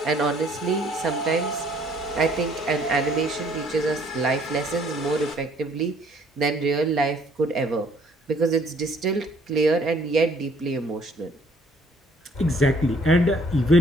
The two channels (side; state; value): both; normal; correlation 0.61